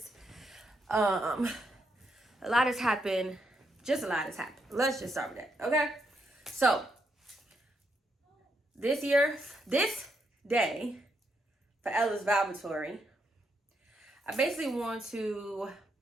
A lot has happened. Just a lot has happened. Let's just start with that. Okay, so this day for Ella's Vibatory, I basically want to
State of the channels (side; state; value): both; normal; correlation 0.79